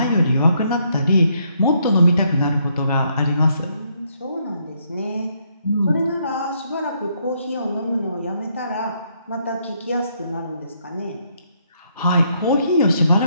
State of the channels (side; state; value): both; inverted; correlation -0.73